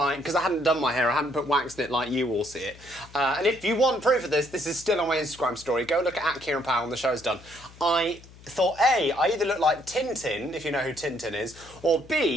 because I hadn't done my hair, I hadn't put wax in it like you all see it. And if you want proof of this is still on my Instagram story. Go look at Kieran Powell when the show's done. I thought A, I either look like Tintin, if you know who Tintin is, or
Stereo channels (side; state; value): left; noise; hum, 21 dB below the sound